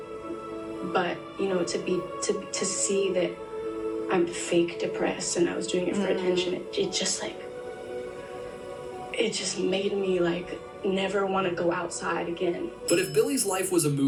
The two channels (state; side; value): identical; both; correlation 1.00